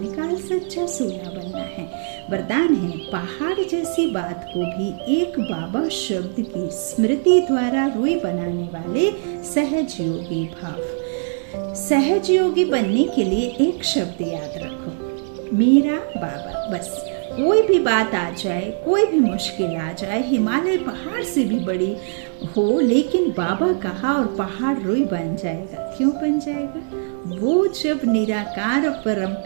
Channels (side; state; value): left; silent; digital silence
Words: सच्चा सोना बनना है। वरदान है, पहाड़ जैसी बात को भी एक बाबा शब्द की स्मृति द्वारा रुई बनाने वाले सहज योगी भाव। सहज योगी बनने के लिए एक शब्द याद रखो, मेरा बाबा। बस कोई भी बात आ जाए, कोई भी मुश्किल आ जाए, हिमालय पहाड़ से भी बड़ी हो, लेकिन बाबा कहा और पहाड़ रुई बन जाएगा। क्यों बन जाएगा? वो जब निराकार परम